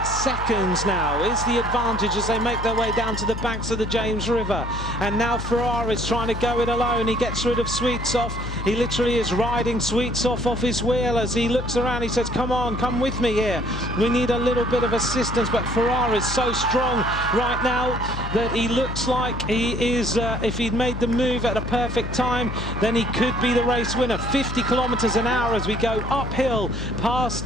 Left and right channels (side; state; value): left; noise; hum, 7 dB below the sound